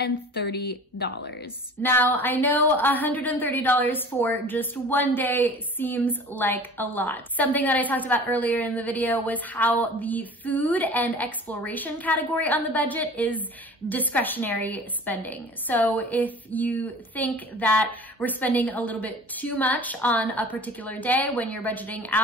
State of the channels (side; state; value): both; normal; correlation 0.42